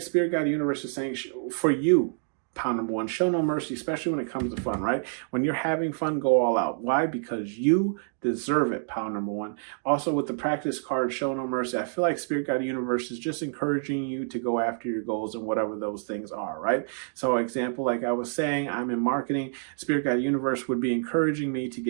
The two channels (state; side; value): silent; left; digital silence